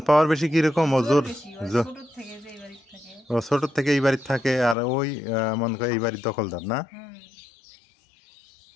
পাওয়ার বেশি কিরকম, ও জোর, ছোট থেকে যে এই বাড়িতে থাকে, ও ছোট থেকে এই বাড়িতে থাকে। আর ওই মনে করে এই বাড়ির দখলদার না,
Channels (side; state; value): right; drops out; at 4.8 s